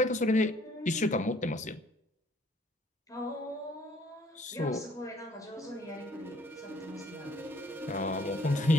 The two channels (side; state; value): both; normal; correlation 0.61